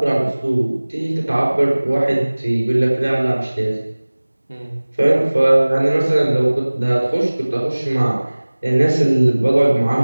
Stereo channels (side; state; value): both; inverted; correlation -1.00